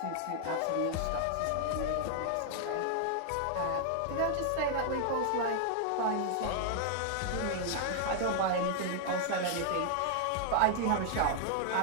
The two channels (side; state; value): both; different; correlation 0.00